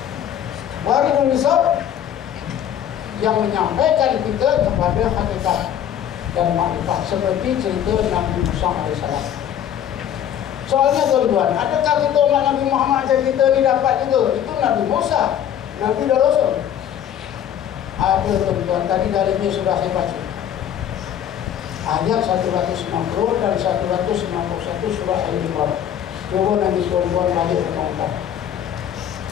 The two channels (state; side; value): quieter; right; 9.8 dB